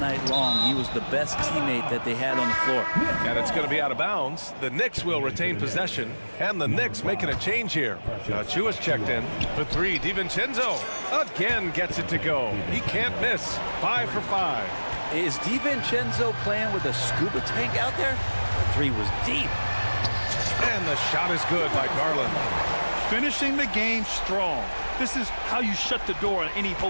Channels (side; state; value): both; inverted; correlation -1.00